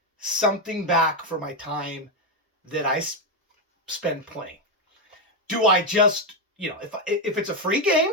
something back for my time that I spend playing. Do I just, if it's a free game,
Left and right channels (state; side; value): normal; both; correlation 0.06